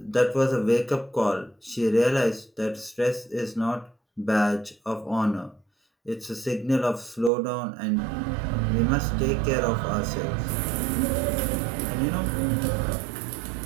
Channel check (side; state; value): left; drops out; at 7.3 s